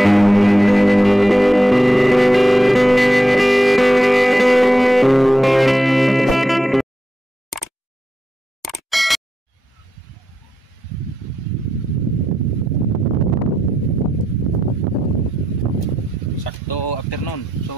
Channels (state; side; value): normal; both; correlation 0.86